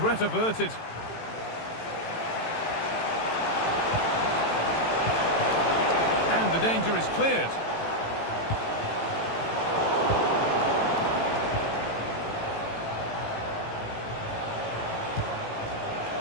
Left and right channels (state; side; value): late; right; 18 ms